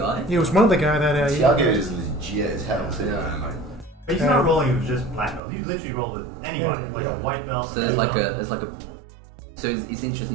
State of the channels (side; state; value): left; drops out; at 5.4 s